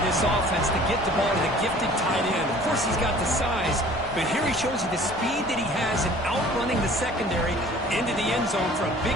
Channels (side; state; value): both; normal; correlation 0.49